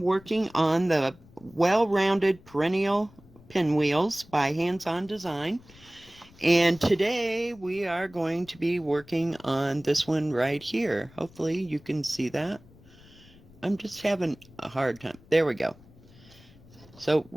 on the well-rounded perennial pinwheels by Hands On Design. And today we are going to be working on this one right here. Hopefully you can see that. I'm just having a hard time. There we go. So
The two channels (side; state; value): left; noise; rumble, 24 dB below the sound